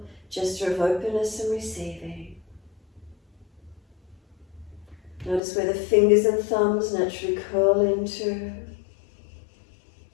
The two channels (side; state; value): right; drops out; at 5.4 s